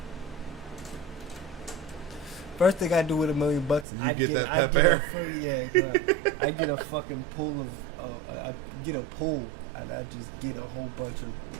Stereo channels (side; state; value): left; drops out; at 3.9 s